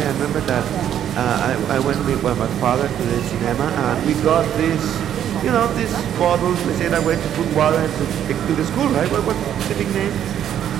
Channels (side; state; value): left; quieter; 10.1 dB